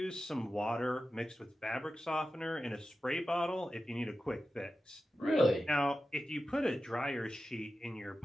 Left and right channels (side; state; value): both; normal; correlation 0.93